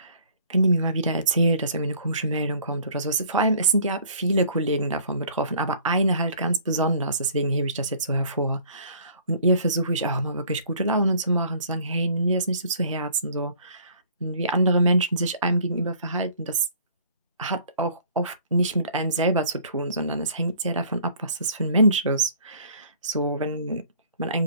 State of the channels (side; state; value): both; inverted; correlation -0.55